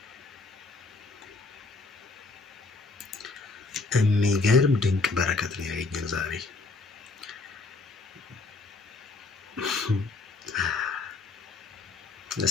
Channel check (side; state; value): right; quieter; 3.9 dB